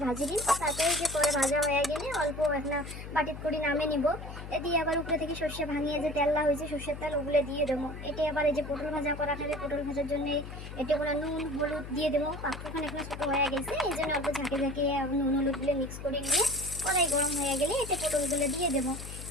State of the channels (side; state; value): left; noise; hum, 10 dB below the sound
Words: ভাজি দিন। তারপরে যে করে ভাজা হয়ে গেলে অল্প একটা বাটির করে নামে নিব। এটি আবার উপরে থেকে সর্ষে ভাঙিয়ে যে তেললা হয়েছে সর্ষের তেল ওগুলো দিয়ে দেবো। এটি আবার এই যে পটল ভাজা করা থাকে পটল ভাজার জন্য এটি কোনো নুন হলুদ দিয়ে দেবো। পাত্রখানে এখানে ছোটো হয়ে গেছে এই জন্য অল্প ঝাঁকে ঝাঁকে নুন হলুদগুলো মিক্স করে নিয়ে কড়াই গরম হয়ে গেলে এতে পটলগুলো দিয়ে দেবো।